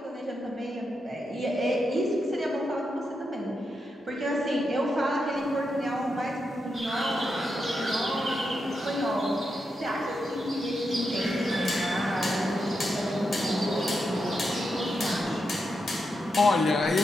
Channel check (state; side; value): normal; both; correlation 0.85